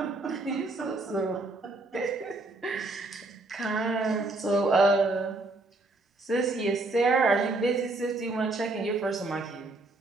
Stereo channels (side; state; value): left; quieter; 3.0 dB